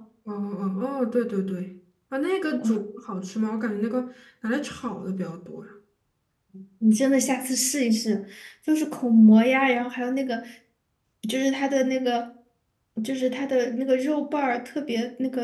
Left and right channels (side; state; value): both; identical; correlation 1.00